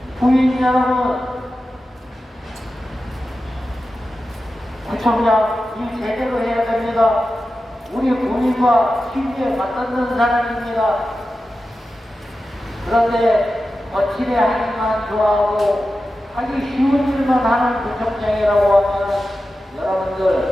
부인 여러분, 구청장 일 제대로 해야 됩니다. 우리 국민과 실제 맞닿는 사람입니다. 그런데 거칠에 하기만 좋아하고 하기 쉬운 일만 하는 구청장이라고 하면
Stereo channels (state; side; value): normal; both; correlation 0.93